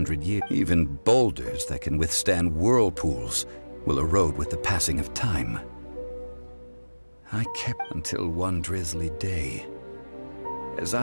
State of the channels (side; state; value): both; inverted; correlation -1.00